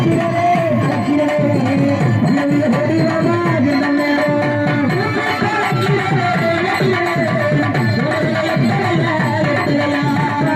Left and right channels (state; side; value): identical; both; correlation 1.00